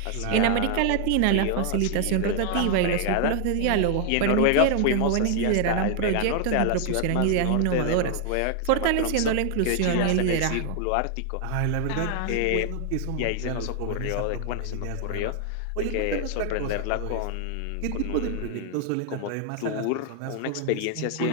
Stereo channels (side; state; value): both; different; correlation 0.00